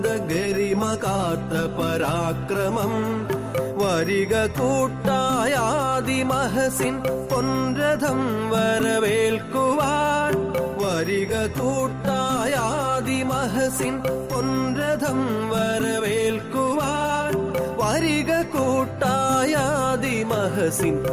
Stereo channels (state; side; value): identical; both; correlation 1.00